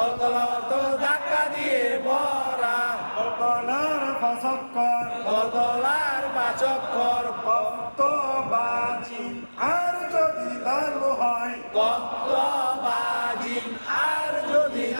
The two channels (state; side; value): inverted; both; correlation -1.00